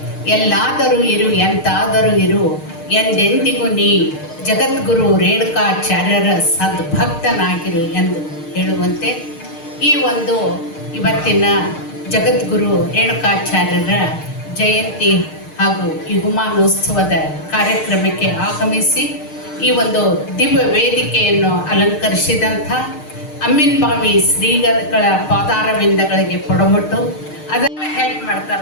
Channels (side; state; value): right; late; 6.5 ms